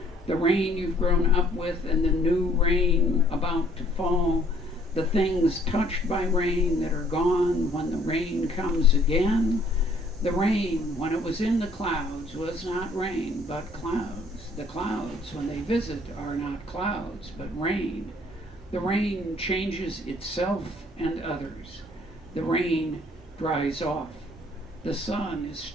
the rain you've grown up with and the new rain about to fall, the things touched by rain that are gone when the rain comes again. The rain, when it was in the clouds, was not rain, but clouds. The clouds, when they visit, are not clouds, but rain. The rain changes itself and others. The rain dries off. The sun is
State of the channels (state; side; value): normal; both; correlation 0.61